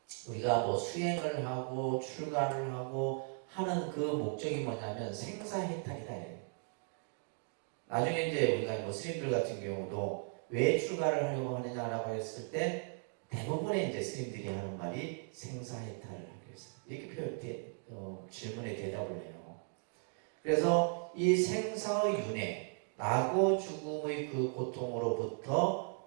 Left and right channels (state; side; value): silent; left; 53 dB below the other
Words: 우리가 뭐 수행을 하고 출가를 하고 하는 그 목적이 뭐냐면 생사해탈이다. 나중에 이제 우리가 뭐 스님들 같은 경우도 왜 출가를 하려고 하느냐라고 했을 때 대부분의 이제 스님들이 하는 말이 생사해탈을 하기 위해서 이렇게 질문에 대답을 해요. 그래서 이 생사의 윤회, 나고 죽음의 그 고통으로부터